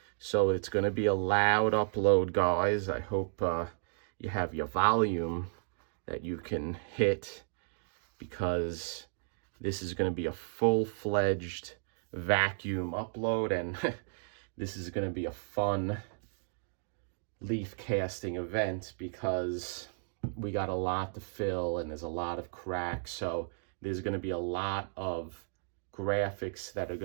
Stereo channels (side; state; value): left; silent; digital silence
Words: So it's gonna be a loud upload, guys. I hope you have your volume that you can hit, because this is gonna be a full-fledged vacuum upload, and this is gonna be a fun leaf casting event because we got a lot to fill and there's a lot of cracks. So there's gonna be a lot of graphics that are